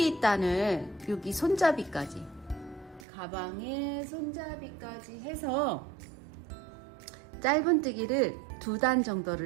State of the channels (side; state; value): left; drops out; at 3.1 s